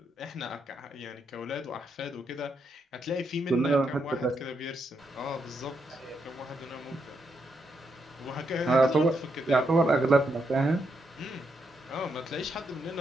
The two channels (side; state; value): both; normal; correlation 0.80